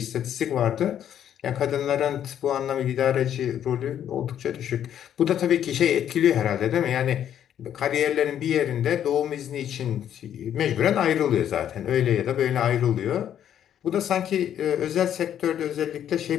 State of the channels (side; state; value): right; quieter; 10.0 dB